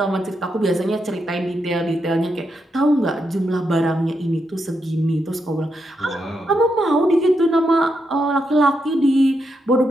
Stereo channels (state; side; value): normal; both; correlation 0.83